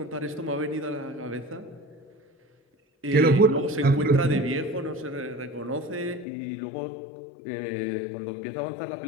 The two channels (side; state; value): right; drops out; at 6.2 s